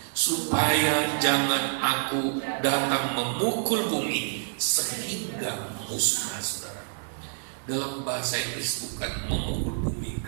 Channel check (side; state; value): left; silent; digital silence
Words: supaya jangan aku datang memukul bumi sehingga musnah, saudara. Dalam bahasa Inggris bukan memukul bumi